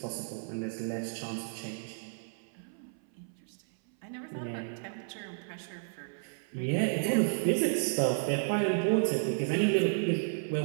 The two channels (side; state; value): left; silent; 56 dB below the other